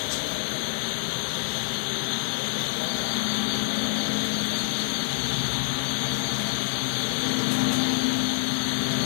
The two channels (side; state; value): right; silent; digital silence